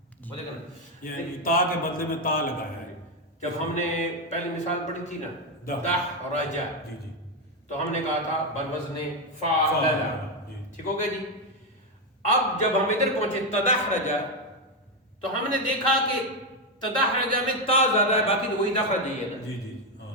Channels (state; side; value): normal; both; correlation 0.07